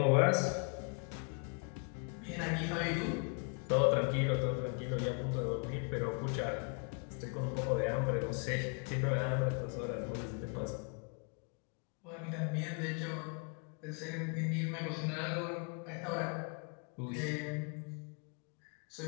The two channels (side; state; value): right; quieter; 38.4 dB